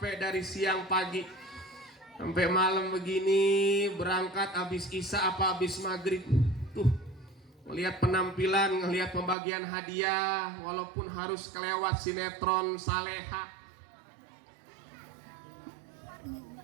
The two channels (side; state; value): left; drops out; at 9.3 s